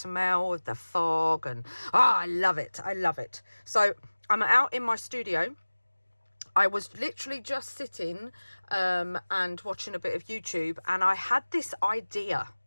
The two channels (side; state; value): both; inverted; correlation -1.00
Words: of the fog, and I love it, I love it. So I'm out in my studio. I was literally just sitting and watching a bit of YouTube, and I had this idea.